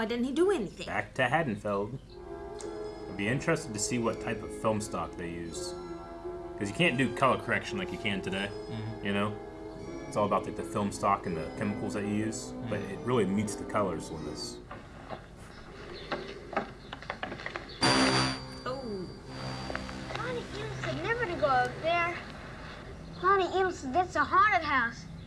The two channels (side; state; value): both; identical; correlation 1.00